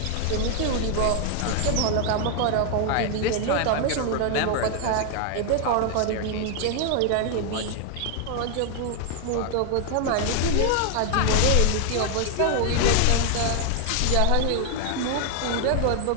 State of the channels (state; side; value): different; both; correlation 0.00